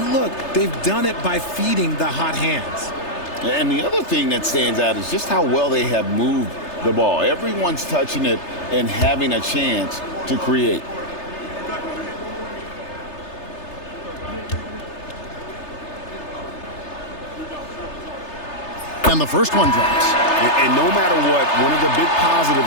look, they've done it by feeding the hot hands. And the other thing that stands out is just how well they have moved the ball. Everyone's touching it and having a chance to create. And the first one drops. And no matter what, one of the big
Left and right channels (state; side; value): late; right; 3.3 ms